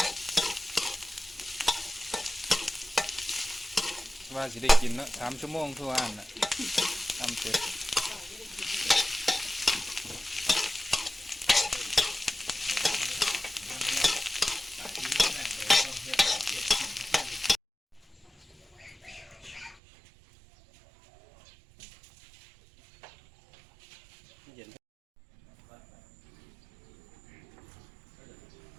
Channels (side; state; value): left; drops out; at 19.8 s